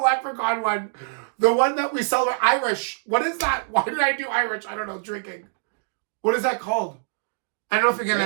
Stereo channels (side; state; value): left; silent; digital silence